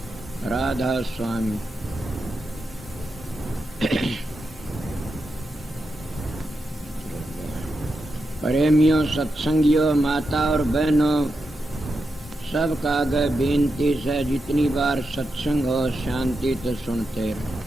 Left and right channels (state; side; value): normal; both; correlation 0.87